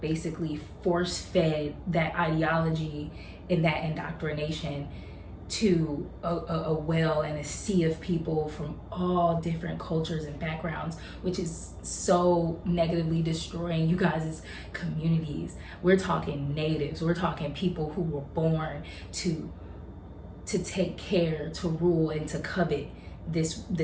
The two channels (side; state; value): both; identical; correlation 1.00